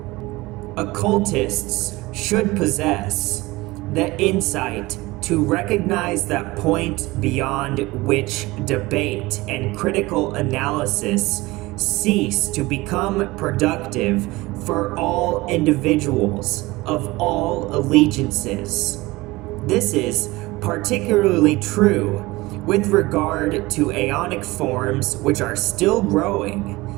Occultists should possess the insight to recognize that point beyond which debate and critical analysis cease to become productive for all individuals of all allegiances. This is particularly true with regard to aeonic forms which are still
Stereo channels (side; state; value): left; quieter; 20.8 dB